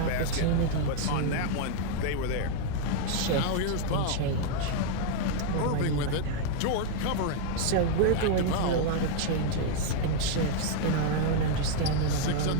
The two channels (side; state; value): both; different; correlation 0.00